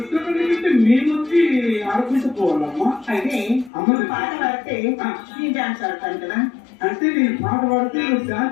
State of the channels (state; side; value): drops out; right; at 3.7 s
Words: మేము వచ్చి ఆడుకుంటూ పోవాలమ్మా. అయితే అమ్మ పాట పాడితే నేను డాన్స్ ఆడతాను కదా. అంటే నేను పాట పాడితే నువ్వు